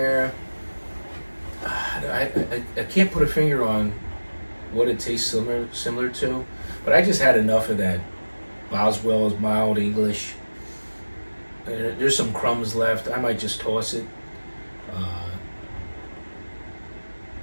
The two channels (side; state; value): both; inverted; correlation -1.00